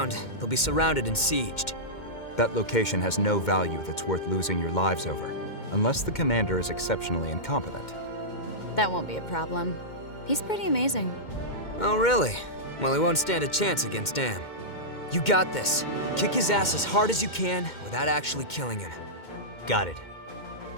they'll be surrounded and sieged. That location has no value that's worth losing your lives over, unless the commander is exceptionally incompetent. That won't be a problem. He's pretty amazing. Oh, really? Well, he won't stand a chance against Am. You got this. Kick his ass as hard as you can without actually killing him. Got it.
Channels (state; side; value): late; right; 2.1 ms